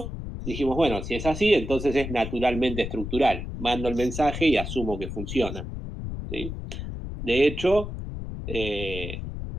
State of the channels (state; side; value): noise; left; rumble, 7 dB below the sound